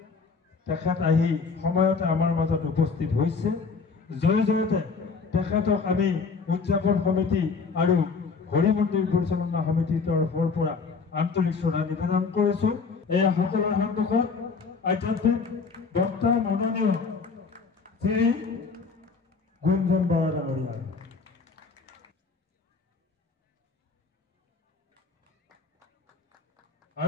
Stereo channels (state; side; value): quieter; right; 4.9 dB